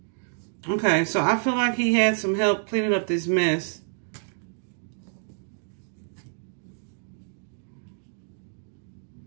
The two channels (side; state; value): left; silent; digital silence